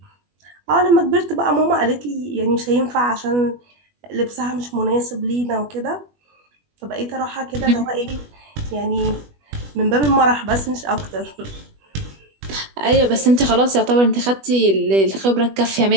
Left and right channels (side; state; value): left; late; 20 ms